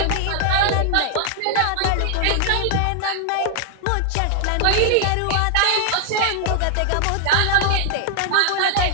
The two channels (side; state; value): both; different; correlation 0.00